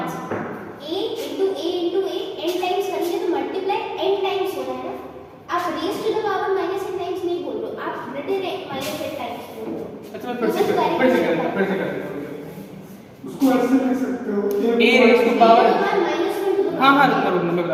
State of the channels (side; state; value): both; identical; correlation 1.00